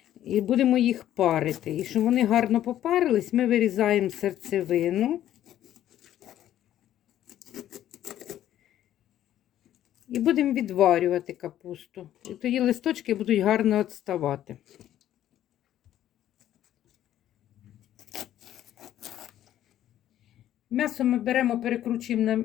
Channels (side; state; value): right; quieter; 12.0 dB